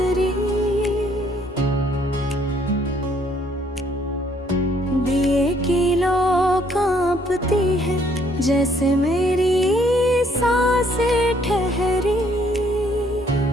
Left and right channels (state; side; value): normal; both; correlation 0.66